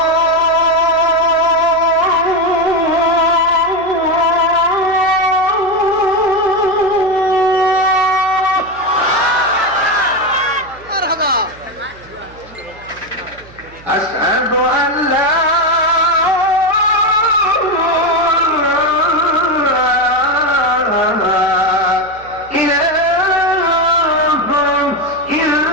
أشهد أن لا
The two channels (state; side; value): noise; right; hum, 23 dB below the sound